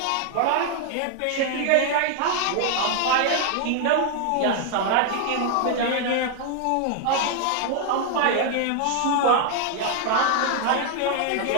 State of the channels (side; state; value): both; different; correlation 0.00